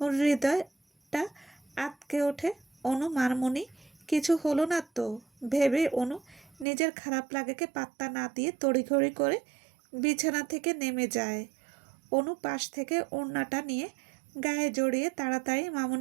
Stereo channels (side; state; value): left; drops out; at 6.7 s